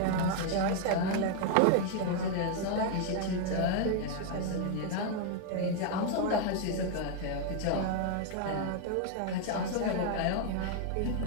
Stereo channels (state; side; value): different; both; correlation 0.00